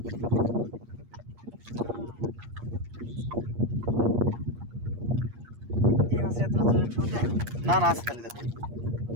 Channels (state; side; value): late; left; 8.5 ms